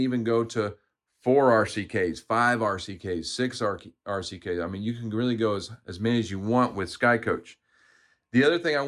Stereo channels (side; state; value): both; identical; correlation 1.00